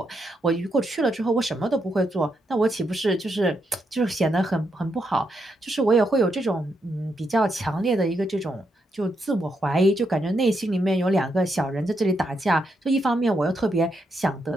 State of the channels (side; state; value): both; normal; correlation 0.81